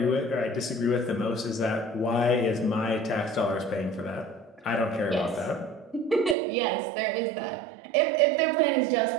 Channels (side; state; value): left; drops out; at 6.4 s